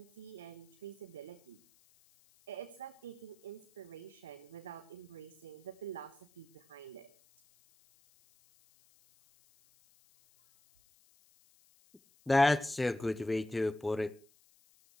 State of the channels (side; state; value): left; noise; hiss, 30 dB below the sound